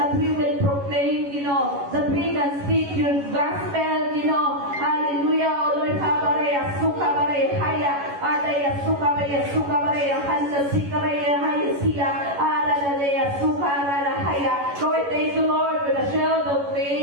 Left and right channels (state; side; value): late; left; 11 ms